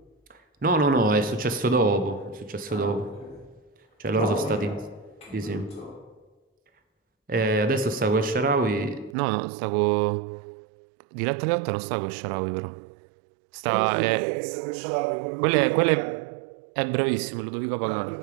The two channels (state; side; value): drops out; left; at 9.2 s